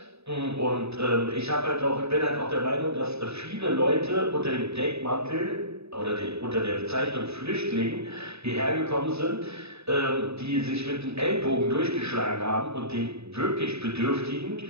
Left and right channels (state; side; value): late; left; 0.79 ms